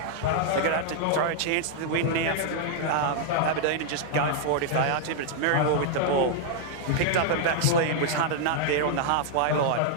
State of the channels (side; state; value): both; different; correlation -0.01